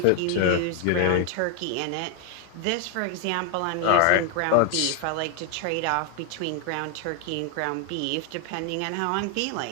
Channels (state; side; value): different; both; correlation 0.00